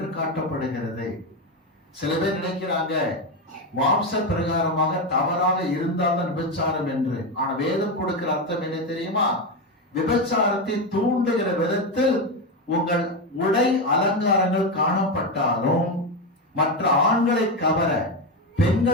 காட்டப்படுகிறது. சில பேர் நினைக்கிறாங்க மாம்ச பிரகாரமாக தவறாக இருந்தால்தான் விபச்சாரம் என்று. ஆனா வேதம் கொடுக்கிற அர்த்தம் என்ன தெரியுமா? விபச்சாரத்தை தூண்டுகிற விதத்தில் உங்கள் உடை அலங்காரங்கள் காணப்பட்டாலும் மற்ற ஆண்களை கவர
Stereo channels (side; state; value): both; normal; correlation 0.12